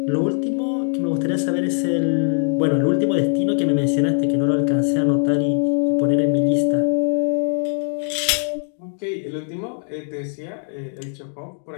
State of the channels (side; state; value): right; silent; 65 dB below the other